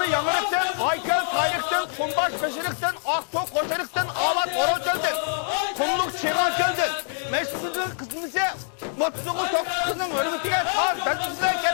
yanırıktın, Aykel saylıktın, Kumbaş beşiriktin, Aktok koşarıktın, Avat horoz çöldün. Kumluk çiğan çöldün. Meşrifimizin kısmısı 30 oğul 9 kızının hürmetine sağ bezmişler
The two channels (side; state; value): right; silent; 62 dB below the other